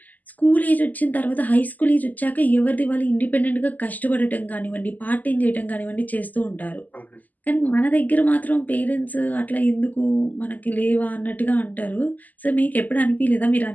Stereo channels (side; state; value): right; late; 0.081 ms